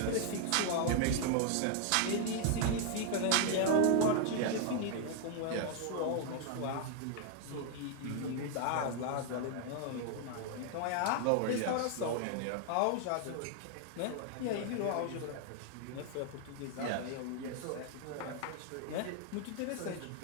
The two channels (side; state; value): both; different; correlation 0.00